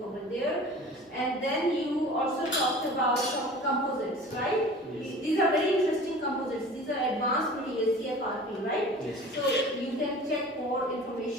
over there. And then you also talked about some composites, right? Yes. These are very interesting composites, these are advanced materials, CFRP, right? Yes. So you can check more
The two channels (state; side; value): normal; both; correlation 0.41